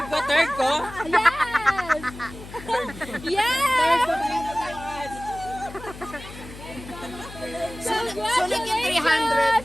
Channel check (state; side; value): noise; left; hum, 15 dB below the sound